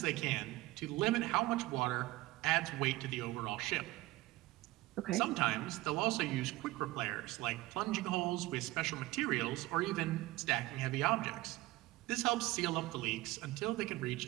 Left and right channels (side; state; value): left; quieter; 18.7 dB